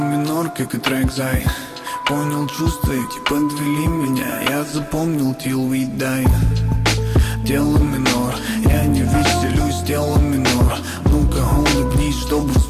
как и трек Зай. Понял чувства эти, подвели меня, я запомнил till we die. Тело минор, я не веселюсь, тело минор. Ну-ка улыбнись, чтобы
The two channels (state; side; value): identical; both; correlation 1.00